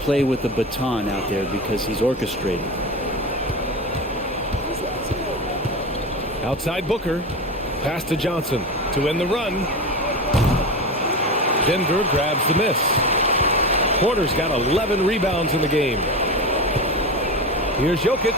with the baton out there because he's orchestrating. Outside Booker. Pass to Johnson to end the run. Denver grabs the miss. Porter's got 11 rebounds in the game. Here's Jokic.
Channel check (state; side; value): normal; both; correlation 0.23